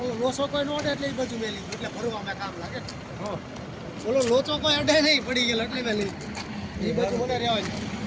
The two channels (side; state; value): both; identical; correlation 1.00